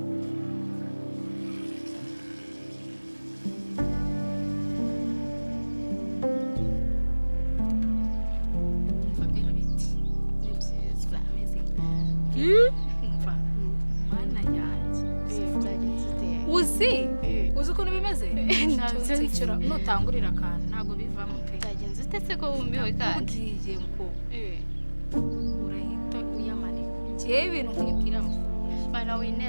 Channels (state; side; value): inverted; both; correlation -1.00